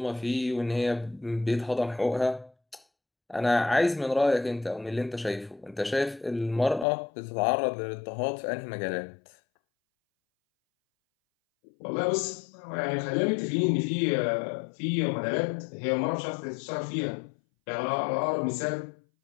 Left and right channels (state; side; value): drops out; right; at 6.9 s